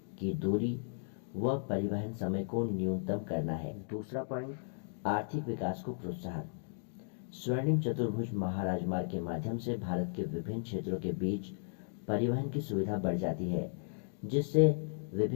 की दूरी व परिवहन समय को न्यूनतम करना है। दूसरा पॉइंट, आर्थिक विकास को प्रोत्साहन। स्वर्णिम चतुर्भुज महाराजमार्ग के माध्यम से भारत के विभिन्न क्षेत्रों के बीच परिवहन की सुविधा बढ़ जाती है, जिससे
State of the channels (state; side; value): silent; right; digital silence